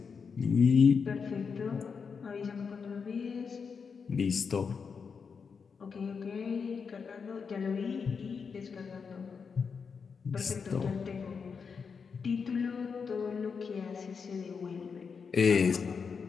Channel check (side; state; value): right; quieter; 5.8 dB